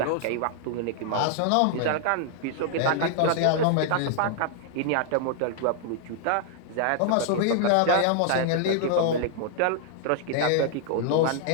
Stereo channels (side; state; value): both; different; correlation 0.00